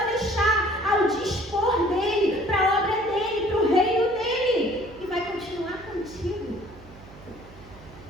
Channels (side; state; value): right; noise; hum, 21 dB below the sound